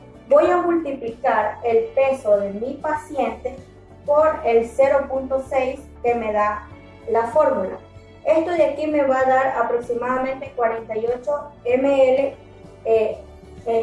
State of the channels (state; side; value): identical; both; correlation 1.00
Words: voy a multiplicar el peso de mi paciente por el 0.6 que me da la fórmula. Esto de aquí me va a dar aproximadamente 48 ml